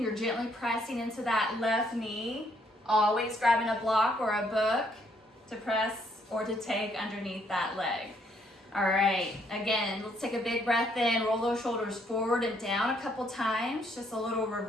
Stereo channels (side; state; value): both; normal; correlation 0.70